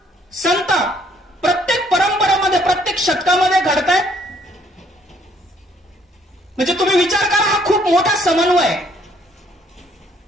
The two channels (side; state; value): both; normal; correlation 0.65